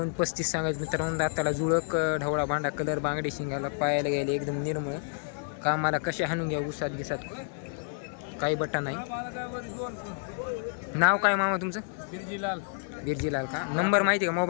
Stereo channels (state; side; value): silent; right; digital silence